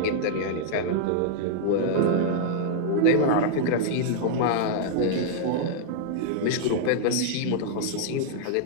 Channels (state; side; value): different; both; correlation -0.01